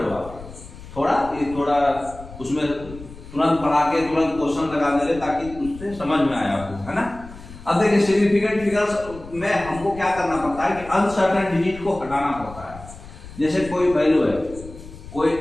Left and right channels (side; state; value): left; noise; rumble, 16 dB below the sound